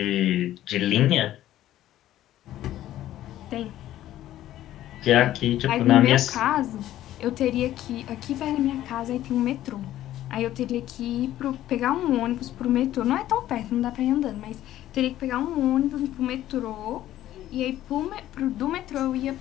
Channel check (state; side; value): quieter; right; 13.4 dB